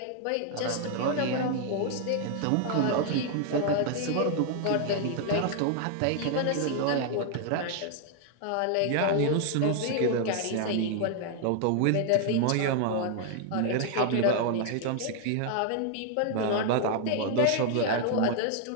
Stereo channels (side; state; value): both; different; correlation 0.00